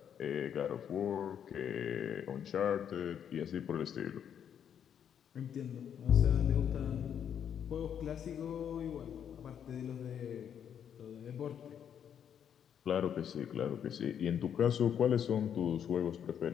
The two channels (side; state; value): right; quieter; 8.7 dB